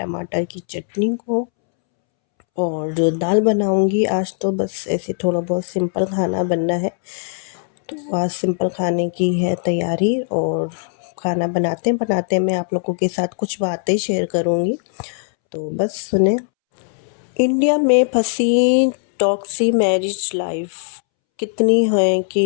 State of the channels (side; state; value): right; silent; 66 dB below the other